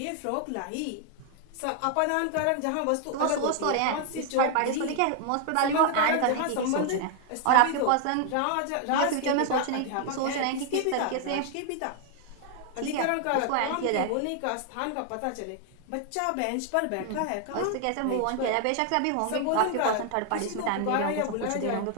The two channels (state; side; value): different; both; correlation 0.00